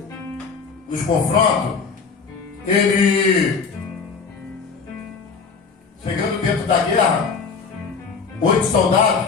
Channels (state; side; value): quieter; right; 5.2 dB